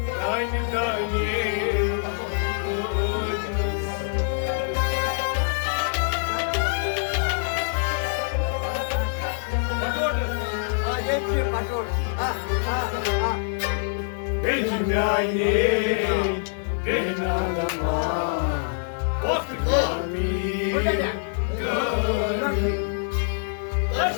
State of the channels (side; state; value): right; silent; 60 dB below the other